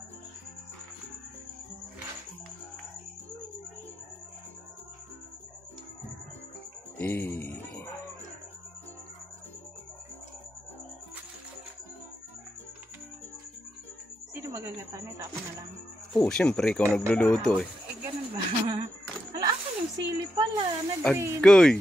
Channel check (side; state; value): both; normal; correlation 0.84